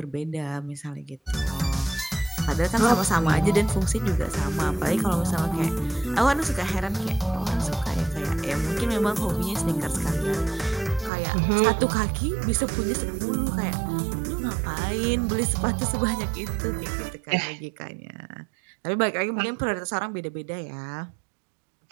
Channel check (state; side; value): drops out; left; at 11.1 s